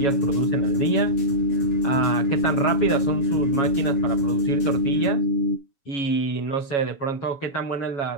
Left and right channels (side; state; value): right; late; 7.2 ms